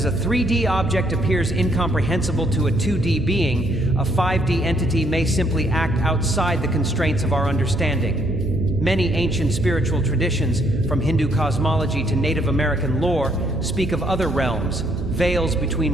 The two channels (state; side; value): noise; right; hum, 9 dB below the sound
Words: a 3D object appears incomprehensible to a 2D being, a 5D entity may simply act outside the constraints of our understanding. Many ancient spiritual traditions, from Hindu cosmology to Native American lore, speak of other realms, veils